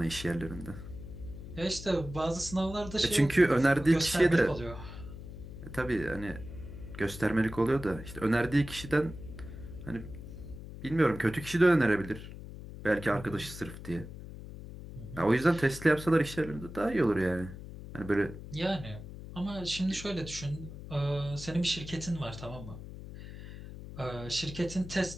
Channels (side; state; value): left; noise; hum, 12 dB below the sound